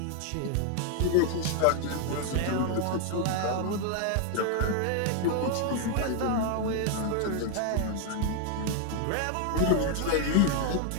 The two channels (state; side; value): different; both; correlation 0.00